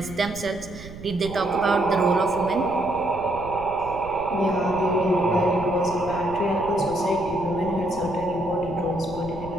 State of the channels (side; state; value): right; noise; rumble, 14 dB below the sound